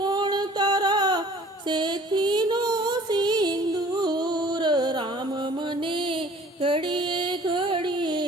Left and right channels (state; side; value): normal; both; correlation 0.51